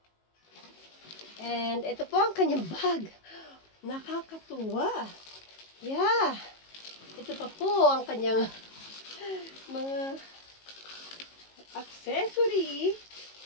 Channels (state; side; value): late; right; 18 ms